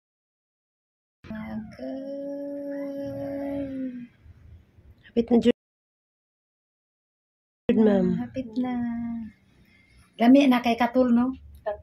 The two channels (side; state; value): both; identical; correlation 1.00